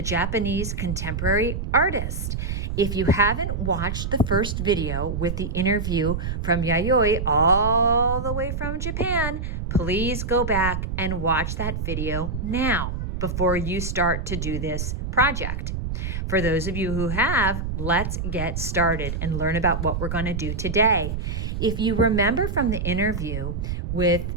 Japanese contemporary artist. If you haven't watched the first video with the interview from Yayoi all the way from Japan, please go back and watch that video now before you start to do this project. For those of you who have, let's get started and learn about what we're going to do today. If you remember from the interview with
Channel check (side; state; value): right; noise; rumble, 3 dB below the sound